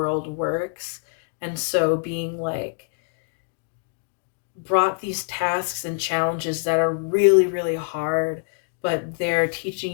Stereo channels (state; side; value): silent; right; digital silence